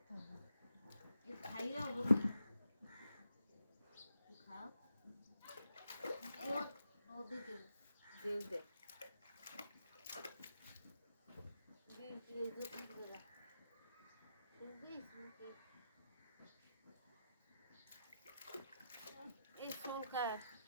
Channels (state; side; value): inverted; both; correlation -0.85